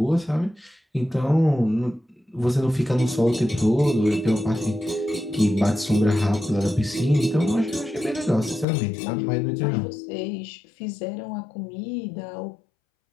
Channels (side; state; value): right; drops out; at 8.7 s